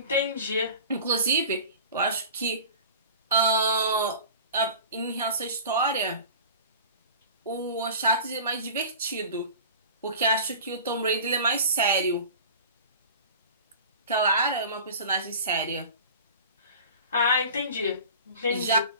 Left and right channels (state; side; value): inverted; both; correlation -0.39